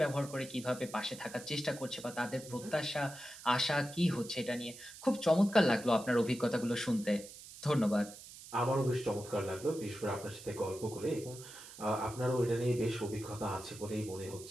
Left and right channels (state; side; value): noise; right; hiss, 15 dB below the sound